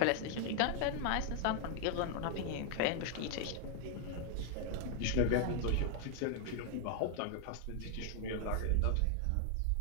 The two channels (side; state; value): both; different; correlation 0.00